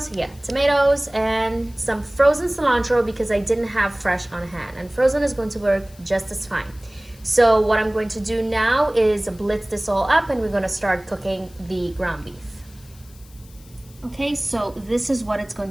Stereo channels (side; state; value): left; noise; hiss, 25 dB below the sound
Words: Yeah, tomatoes and some frozen cilantro because I didn't have fresh on hand, and frozen is going to work just as fine. So what I'm going to do now is blitz this all up, and we're going to start cooking the ground beef. Okay, so this is what it's